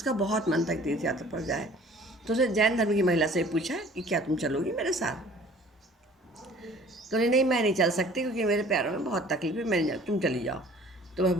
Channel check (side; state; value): both; normal; correlation 0.51